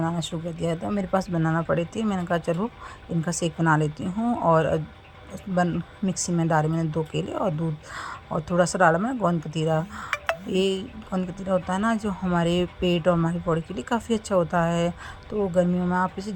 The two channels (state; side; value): identical; both; correlation 1.00